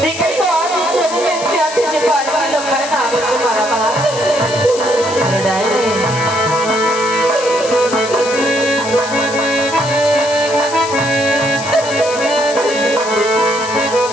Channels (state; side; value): noise; left; hiss, 10 dB below the sound